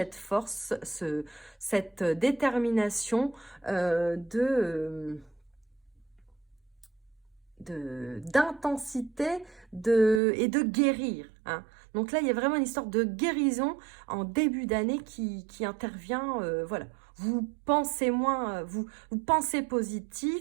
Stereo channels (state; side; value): drops out; left; at 10.2 s